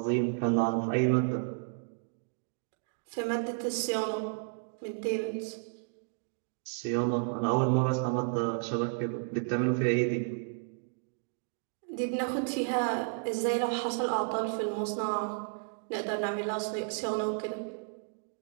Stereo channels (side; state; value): left; silent; digital silence